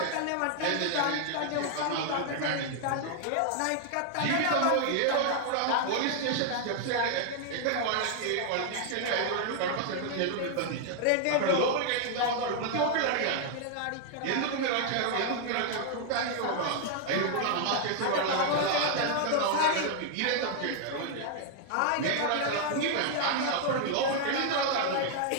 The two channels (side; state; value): both; different; correlation 0.00